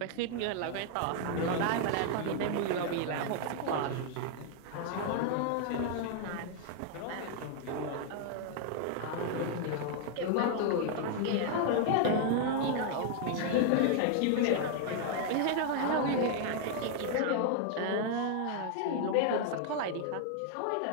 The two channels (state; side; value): different; both; correlation 0.00